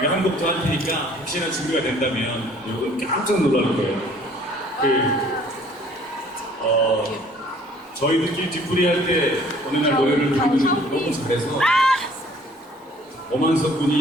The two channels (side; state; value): both; normal; correlation 0.56